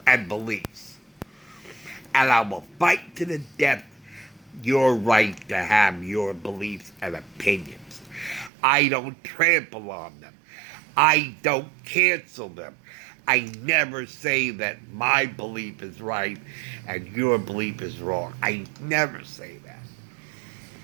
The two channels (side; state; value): left; drops out; at 8.5 s